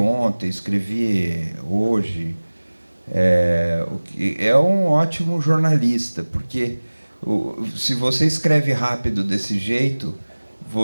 escrevi hoje. É um ótimo jornalista, porque se você escreve rápido desse jeito,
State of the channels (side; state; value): both; inverted; correlation -1.00